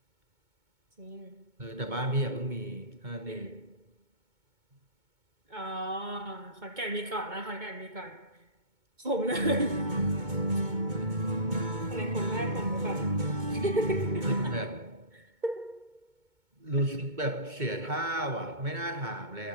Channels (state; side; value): late; left; 2.2 ms